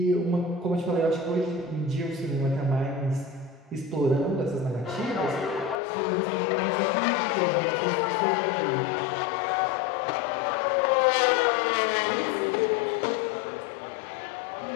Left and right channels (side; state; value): right; drops out; at 5.8 s